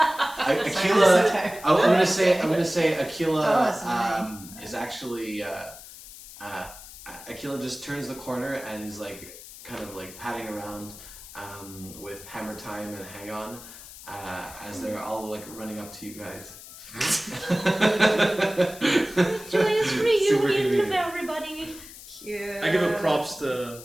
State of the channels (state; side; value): noise; left; hiss, 16 dB below the sound